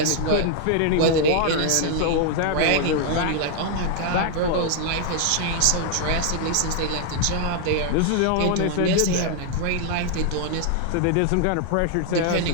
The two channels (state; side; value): different; both; correlation 0.00